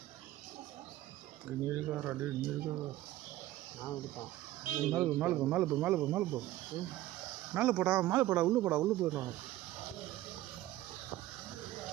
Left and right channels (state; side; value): quieter; left; 15.3 dB